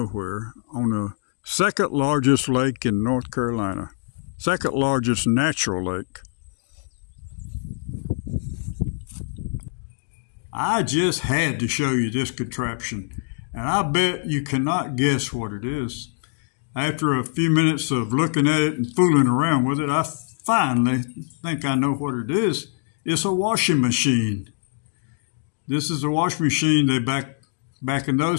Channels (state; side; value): silent; right; digital silence